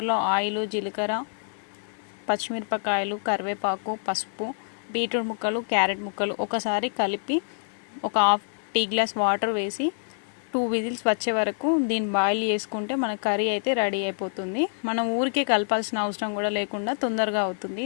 ఆయిల్, జీలకర్ర, పచ్చిమిరపకాయలు, కరివేపాకు, పసుపు, బీట్రూట్ ముక్కలు, క్యారెట్ ముక్కలు ఒకసారి కలిపి ఒక హాఫ్ టీ గ్లాస్ వాటర్ వేసి 2 విజిల్స్ వచ్చే వరకు దీన్ని బాయిల్ చేసుకుంటే మన కర్రీ అయితే రెడీ అయిపోతుంది. మనం ఊరికే కలపాల్సిన అవసరం కూడా లేకుండా తొందరగా అవుతుంది.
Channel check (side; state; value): right; silent; 61 dB below the other